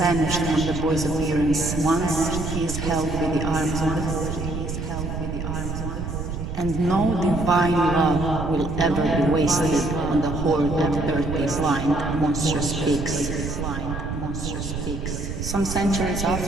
from the boy's appearance once he is held with the arms of the horde. And no divine love will ever be wasted on the horde of dirty, blind, monstrous pigs. Some centuries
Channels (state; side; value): noise; right; rumble, 5 dB below the sound